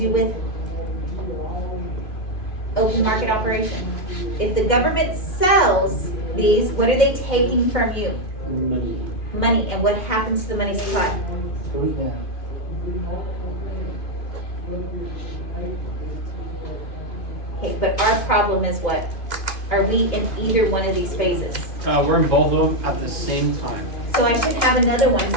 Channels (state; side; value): late; right; 2.5 ms